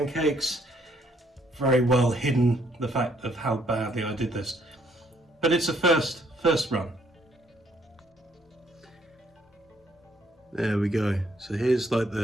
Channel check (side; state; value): both; normal; correlation 0.68